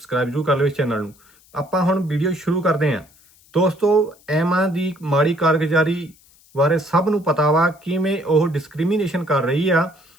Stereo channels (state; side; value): noise; left; hiss, 29 dB below the sound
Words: ਜ਼ਰੂਰ ਕਰ ਲਿਓ ਇਸ ਚੈਨਲ ਨੂੰ। ਆਪਾਂ ਹੁਣ ਵੀਡੀਓ ਸ਼ੁਰੂ ਕਰਦੇ ਹਾਂ। ਦੋਸਤੋ, ਐਮਾਂ ਦੀ ਮਾੜੀ ਕਾਰਗੁਜ਼ਾਰੀ ਬਾਰੇ ਸਭ ਨੂੰ ਪਤਾ ਵਾ ਕਿਵੇਂ ਉਹ ਡਿਸਕ੍ਰਿਮੀਨੇਸ਼ਨ ਕਰ ਰਹੀ ਆ।